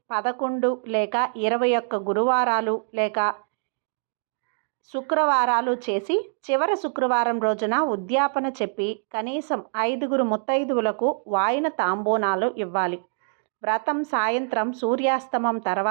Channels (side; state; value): left; silent; digital silence